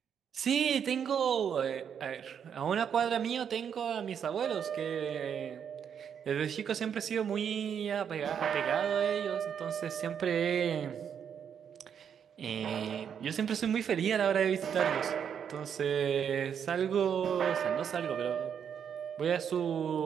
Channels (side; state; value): left; quieter; 7.9 dB